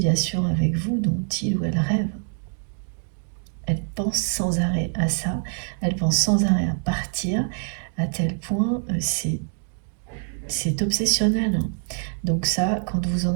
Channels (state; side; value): silent; left; 59 dB below the other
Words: avec vous dont il ou elle rêve. Elle pense sans arrêt à ça, elle pense sans arrêt à partir, à tel point c'est obsessionnel, hein. Donc ça, quand vous